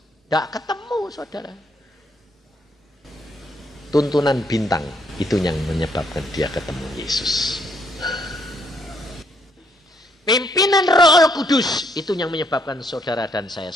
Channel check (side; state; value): both; normal; correlation 0.71